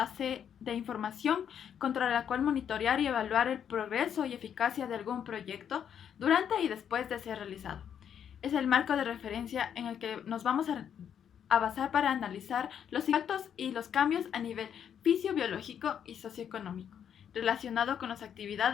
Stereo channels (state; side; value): quieter; right; 8.6 dB